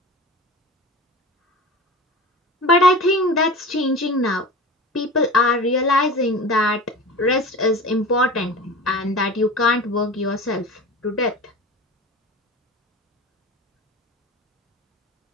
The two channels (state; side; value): normal; both; correlation 0.34